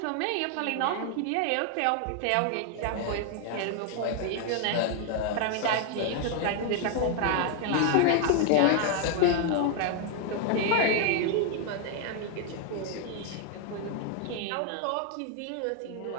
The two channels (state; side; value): different; both; correlation 0.00